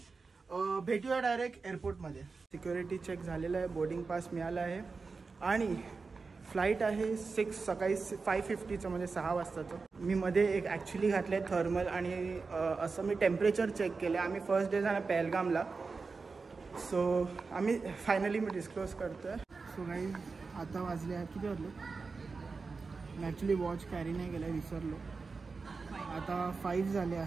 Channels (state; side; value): quieter; left; 4.4 dB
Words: भेटूया डायरेक्ट एअरपोर्टमध्ये. सिक्युरिटी चेक झालेलं आहे, बोर्डिंग पास मिळाला आहे आणि फ्लाईट आहे सकाळी 5:50चं, म्हणजे 6 वाजताचं. मी मध्ये एक ॲक्च्युली घातलं आहे थर्मल आणि असं मी टेम्परेचर चेक केलं. आम्ही फर्स्ट डे जाणार पहलगामला. सो आम्ही फायनली मी डिस्क्लोज करतो आहे. सो काही आता वाजले आहेत, किती वाजले मी ॲक्च्युली वॉच कॅरी नाही केलं, विसरलो. आता 5 झाले